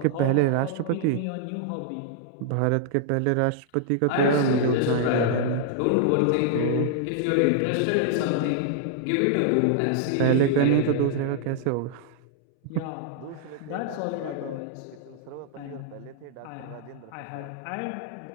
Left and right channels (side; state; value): both; different; correlation -0.01